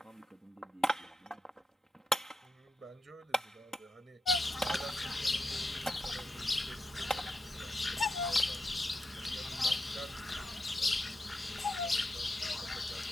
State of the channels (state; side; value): normal; both; correlation 0.86